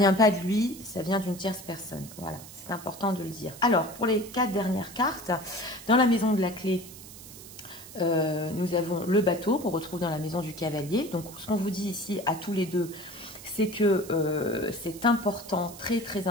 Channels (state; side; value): noise; right; hiss, 16 dB below the sound